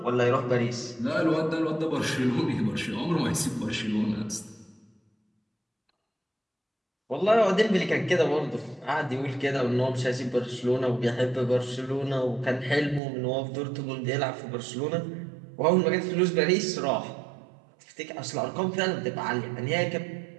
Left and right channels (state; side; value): drops out; left; at 13.0 s